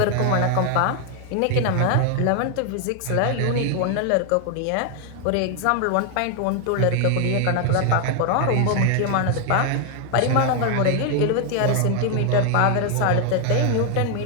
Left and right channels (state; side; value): different; both; correlation 0.01